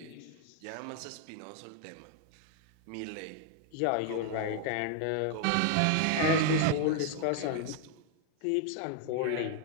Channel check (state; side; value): different; both; correlation 0.00